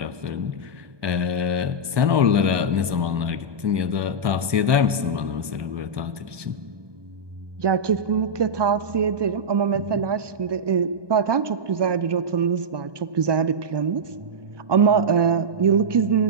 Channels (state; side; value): late; left; 1.2 ms